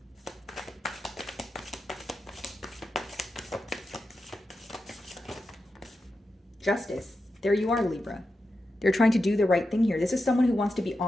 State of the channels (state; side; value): normal; both; correlation 0.89